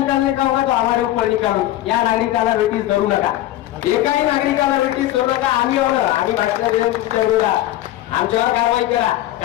का होगा तो हमारे ऊपर निकालो, या नागरिकाला वेटीस धरू नका, एकाही नागरिकाला वेटीस धरू नका। आम्ही भाषण देऊन तुमच्या विरोधात आमच्यावर कारवाई करा,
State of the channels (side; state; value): right; quieter; 14.5 dB